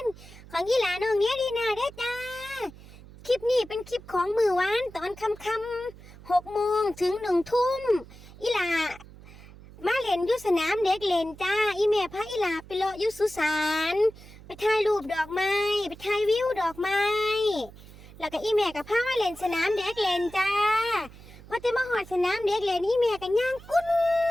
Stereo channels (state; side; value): noise; right; hum, 19 dB below the sound